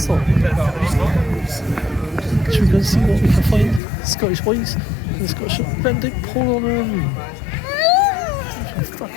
stop. Should we go and see what we can find? Scottish ways and the Scottish. Ben, don't pull on them. I'm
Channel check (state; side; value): drops out; right; at 3.8 s